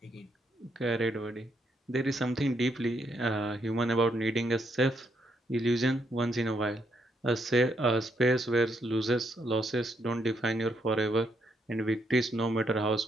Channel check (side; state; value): both; normal; correlation 0.76